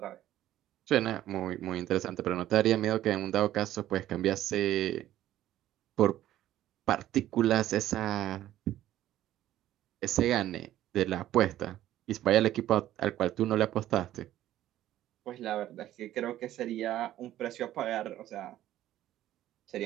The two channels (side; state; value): left; quieter; 13.3 dB